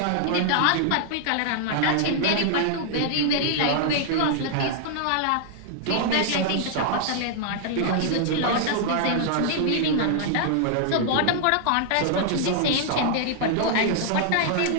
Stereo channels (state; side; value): different; both; correlation 0.00